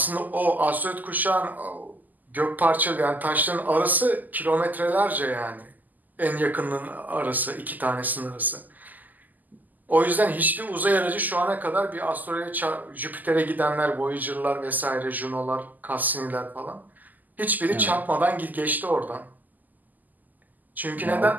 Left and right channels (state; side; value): late; left; 0.083 ms